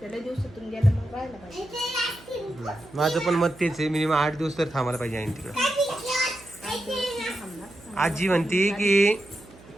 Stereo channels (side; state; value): right; noise; hum, 22 dB below the sound